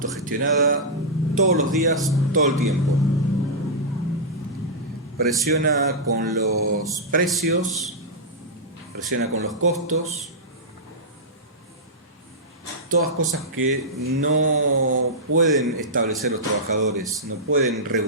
todos los días, todo el tiempo. Presiona con los precios, presiona con los costos, todas cosas que no pueden establecer los trabajadores, no pueden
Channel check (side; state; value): both; normal; correlation -0.12